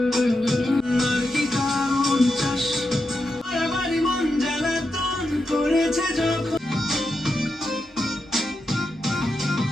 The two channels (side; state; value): both; normal; correlation 0.87